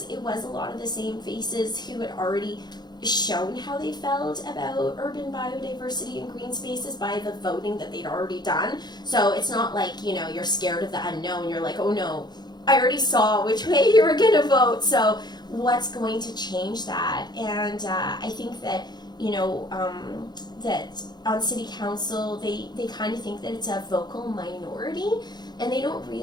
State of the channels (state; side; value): late; right; 0.20 ms